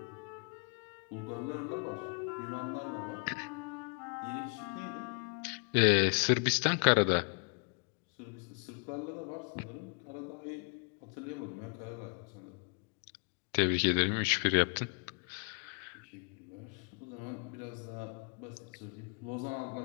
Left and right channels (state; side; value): quieter; right; 36.7 dB